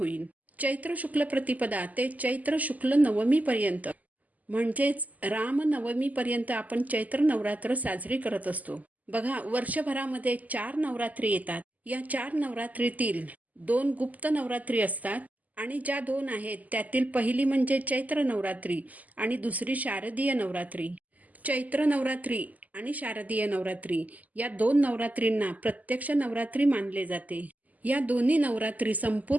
चैत्र शुक्ल प्रतिपदा ते चैत्र शुक्ल नवमी पर्यंत म्हणजेच रामनवमीपर्यंत आपण चैत्र नवरात्र साजरी करत असतो. बघा, वर्षभरामध्ये 4 नवरात्री येतात. या 4 नवरात्रीतील 2 गुप्त नवरात्री असतात आणि ज्या 2 आहेत त्यातील पहिली म्हणजे चैत्र नवरात्री आणि दुसरी शारदीय नवरात्री. चैत्र नवरात्री आणि शारदीय नवरात्री या 2 नवरात्रींना प्रत्यक्ष नवरात्री मानले जाते. या दोन्ही नवरात्री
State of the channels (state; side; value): late; left; 0.078 ms